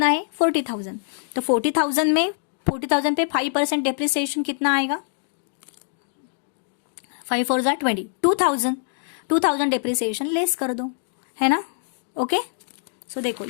है 40,000। तो 40,000 में 40,000 पे 5% डेप्रिसिएशन कितना आएगा 5 4 जा 20, 2,000 डेप्रिसिएशन लेस कर दो है ना ओके। सो देखो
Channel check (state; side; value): silent; right; digital silence